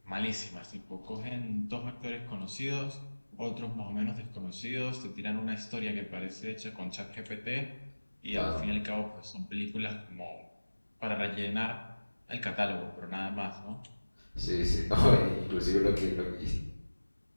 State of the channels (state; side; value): inverted; both; correlation -1.00